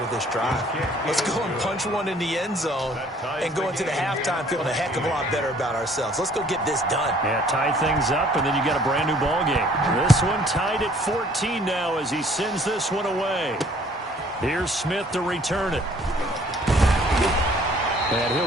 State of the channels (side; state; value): both; normal; correlation 0.58